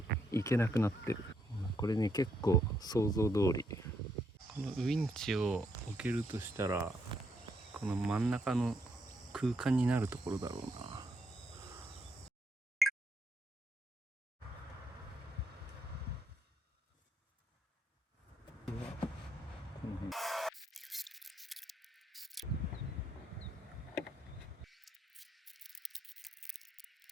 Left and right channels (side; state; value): both; normal; correlation 0.76